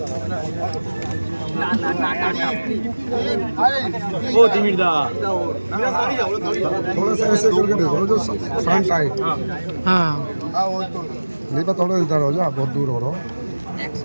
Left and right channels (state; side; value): inverted; both; correlation -1.00